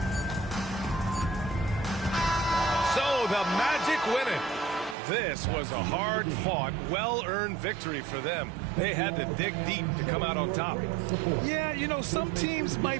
So the Magic win it. This was a hard-fought, well-earned victory for them. They had to dig deep to come out on top. Yeah, you know, some teams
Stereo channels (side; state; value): left; drops out; at 5.0 s